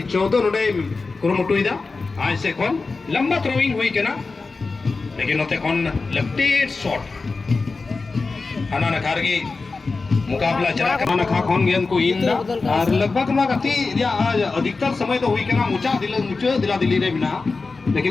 14 नोडे कुरुमुटु इदा आज से कौन लंबा थ्रोइंग हुई केना लेकिन नोते कौन लेफ्टेड शॉट हना नखारगी मुकाबला चला कर नखा कौन गेंद को इन और लगभग ना गति या अधिकतर समय तो हुई केना मुचा दिला दिली रे बिना लेकिन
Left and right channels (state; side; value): quieter; right; 4.0 dB